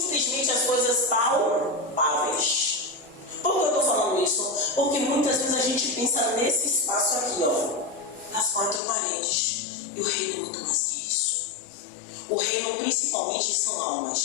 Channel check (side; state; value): right; drops out; at 8.8 s